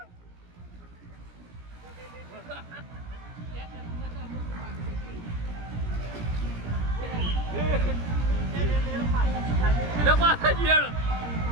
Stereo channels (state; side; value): late; left; 17 ms